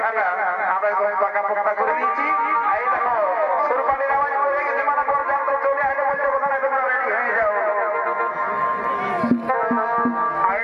আমরা পাকা পোকা করে দিয়েছি এই দেখো সুরপালির আওয়াজ করে গেছে মানা করে জানতো চলে আসে বলছে কোথায় তোমরা রেডি হয়ে যাও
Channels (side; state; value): both; identical; correlation 1.00